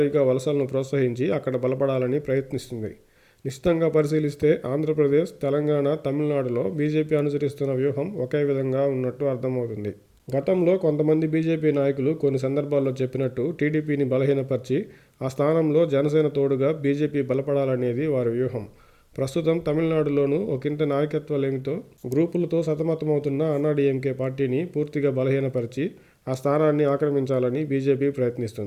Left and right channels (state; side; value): identical; both; correlation 1.00